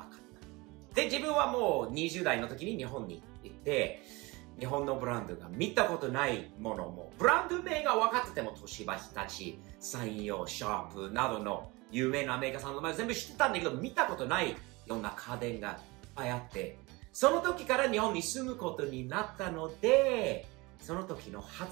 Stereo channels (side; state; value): left; quieter; 23.9 dB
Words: かった。で、自分はもう20代の時に日本に行って、日本のブランドが見たことないものも、ブランド名が分かってても、東芝、日立、三洋、シャープなどの有名なメーカーさんの前全部知ってたんだけど、見たことないような家電がいっぱいあって、その時から日本に住むことになったので、その時の